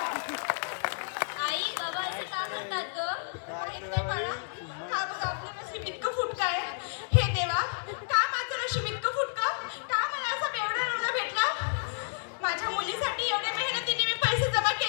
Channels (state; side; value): silent; right; digital silence